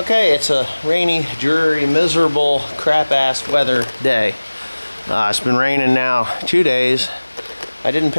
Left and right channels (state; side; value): inverted; both; correlation -1.00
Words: it's a rainy, dreary, miserable, crap-ass weather day. It's been raining now 2 days. I didn't